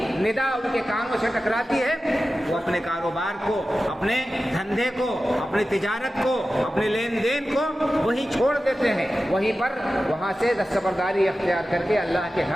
ندا ان کے کانوں سے ٹکراتی ہے, وہ اپنے کاروبار کو, اپنے دھندے کو, اپنی تجارت کو, اپنے لین دین کو وہیں چھوڑ دیتے ہیں. وہیں پر وہاں سے دستبرداری اختیار کر کے اللہ کے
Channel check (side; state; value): both; normal; correlation 0.94